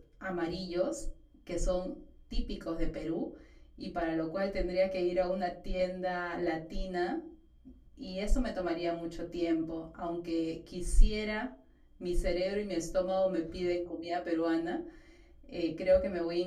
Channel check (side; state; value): both; identical; correlation 1.00